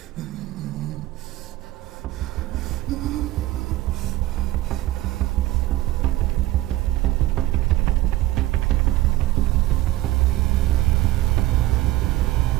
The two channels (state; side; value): quieter; left; 16.3 dB